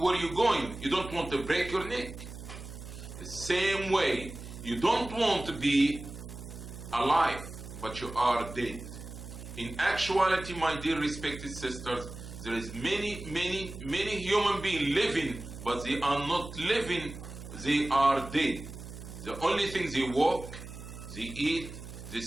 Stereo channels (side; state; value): right; noise; hum, 12 dB below the sound